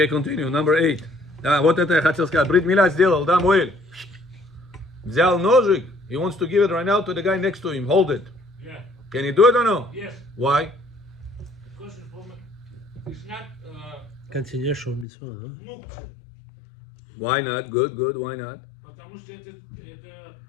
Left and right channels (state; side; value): drops out; right; at 15.1 s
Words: continue. Number 8. Да, вот это я хотел сказать. Брит Мила сделал, да, Моэль? Взял ножик. He wants to give it right now to the guy next to him. Hold it. Yeah. Can he do it or no? Yes. Why? Because it's not Continuation of mitzvah, huh? мукция. Why not? Good, good. Why not? Потому что это